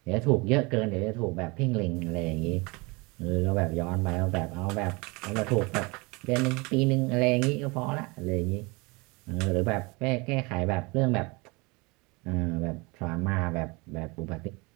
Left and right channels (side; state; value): left; quieter; 26.7 dB